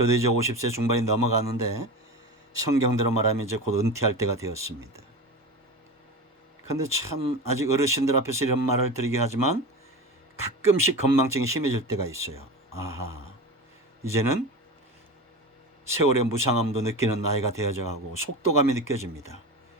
이제 50세 중반이 넘어가는데 성경대로 말하면 이제 곧 은퇴할 때가 되었습니다. 그런데 참 아직 어르신들 앞에서 이런 말을 드리긴 하지만 가끔씩 건망증이 심해질 때가 있어요. 아하, 이제는 세월의 무상함도 느끼는 나이가 되어져 가고 속도감이 느껴집니다.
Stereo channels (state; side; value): normal; both; correlation 0.27